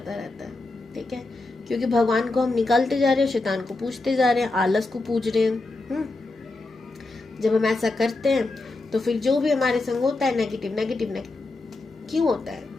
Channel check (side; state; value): right; quieter; 3.1 dB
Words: रहता है। ठीक है, क्योंकि भगवान को हम निकालते जा रहे हैं, शैतान को पूजते जा रहे हैं, आलस को पूज रहे हैं। जब हम ऐसा करते हैं तो फिर जो भी हमारे संग होता है नेगेटिव नेगेटिव नेगेटिव क्यों होता है?